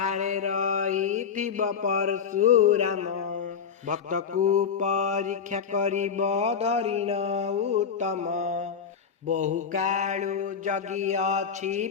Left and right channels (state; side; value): quieter; right; 6.7 dB